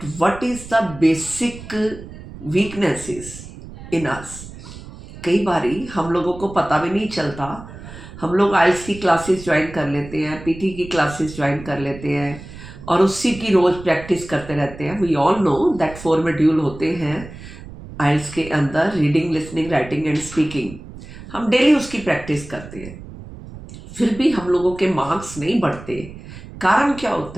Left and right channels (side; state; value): right; noise; rumble, 15 dB below the sound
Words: what is the basic weaknesses in us. कई बारी हम लोगों को पता भी नहीं चलता। हम लोग आइल्स की क्लासेस ज्वाइन कर लेते हैं, पीटी की क्लासेस ज्वाइन कर लेते हैं और उसी की रोज प्रैक्टिस करते रहते हैं। We all know that 4 module होते हैं आइल्स के अंदर, reading, listening, writing and speaking. हम डेली उसकी प्रैक्टिस करते हैं, फिर भी हम लोगों के मार्क्स नहीं बढ़ते। कारण क्या